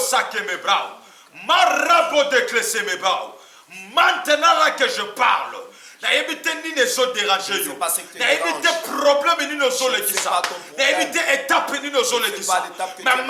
sake me brao, marabo déclesser mes brao. Maintenant là que je parle, na évité ni ne so déranger yo. Na évité problème ni ne so le kisa. Na évité étape ni ne so le kisa. Mais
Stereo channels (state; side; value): identical; both; correlation 1.00